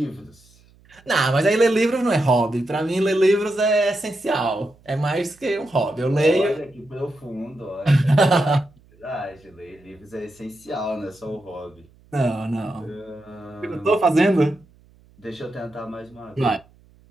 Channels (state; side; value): noise; right; hum, 29 dB below the sound